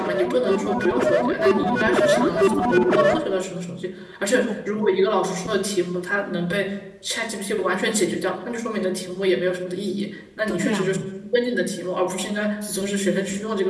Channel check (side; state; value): both; identical; correlation 1.00